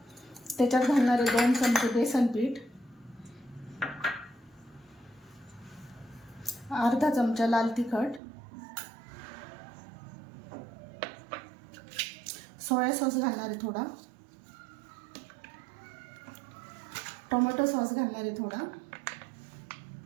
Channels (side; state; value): left; drops out; at 8.2 s